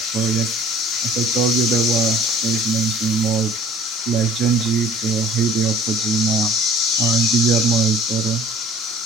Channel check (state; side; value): normal; both; correlation 0.48